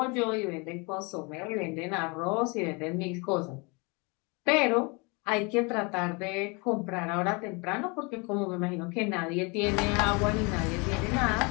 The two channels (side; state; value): right; quieter; 29.8 dB